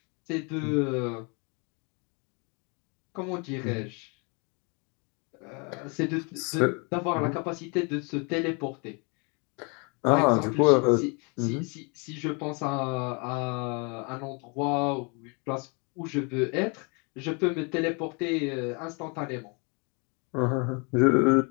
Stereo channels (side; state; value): right; quieter; 33.2 dB